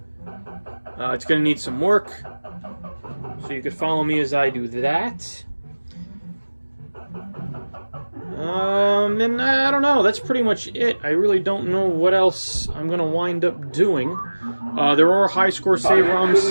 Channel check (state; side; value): inverted; both; correlation -1.00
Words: It's going to need some work. So you could follow me as I do that. And I don't know. That's pretty much it. I really don't know what else I'm going to wind up doing. There are high score save